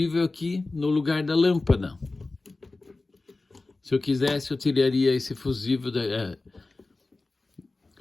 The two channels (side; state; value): right; quieter; 3.3 dB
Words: aqui no lugar da lâmpada. Se eu quisesse, eu tiraria esse fusível,